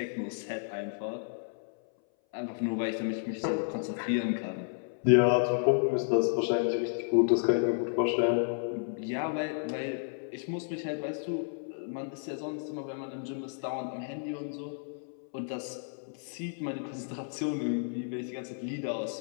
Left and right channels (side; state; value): right; silent; 56 dB below the other